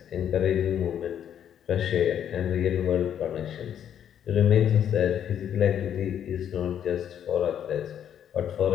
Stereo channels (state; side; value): quieter; right; 9.5 dB